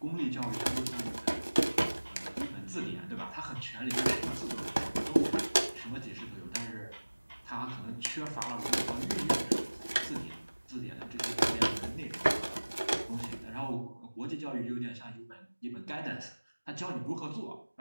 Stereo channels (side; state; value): both; inverted; correlation -1.00